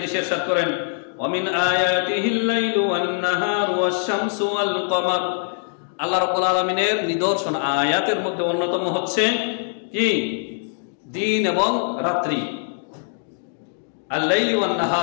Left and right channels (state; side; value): silent; right; digital silence